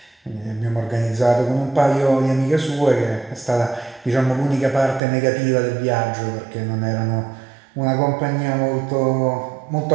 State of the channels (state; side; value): drops out; left; at 5.0 s